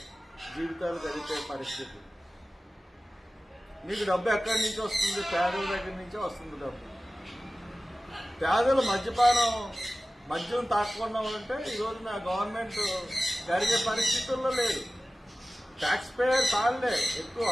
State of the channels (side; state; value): both; normal; correlation 0.96